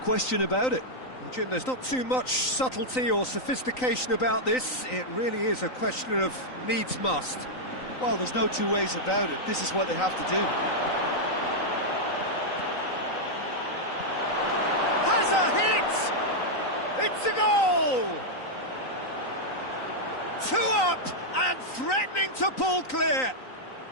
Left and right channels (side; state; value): right; late; 3.9 ms